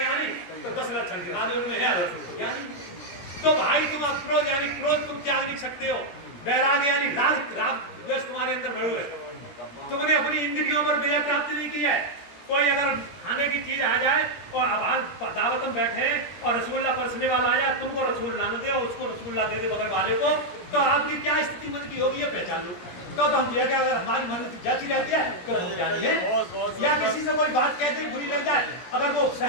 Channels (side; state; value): right; late; 17 ms